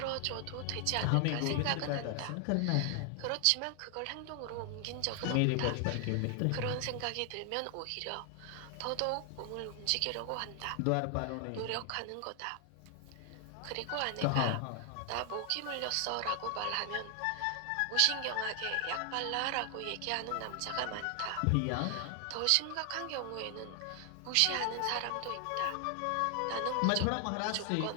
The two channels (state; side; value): different; both; correlation 0.00